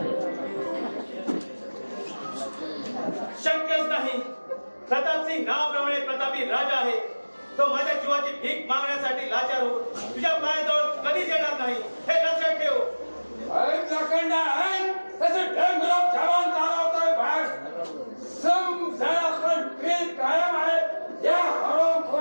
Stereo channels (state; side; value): inverted; both; correlation -1.00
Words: शक्यच नाही. प्रतापसिंग नावाप्रमाणे प्रतापी राजा आहे. तो माझ्या जीवाची भीक मागण्यासाठी लाचार होऊन तुझ्या पायाजवळ कधीच येणार नाही हे लक्षात ठेव. लाखंडा आहे तसं ढंगराव जवान चालवतोय बाहेर. समजा पण बिल कायम आहे या